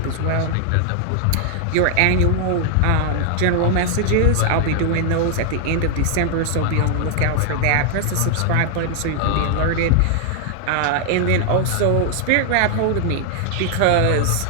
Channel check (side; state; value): both; different; correlation 0.00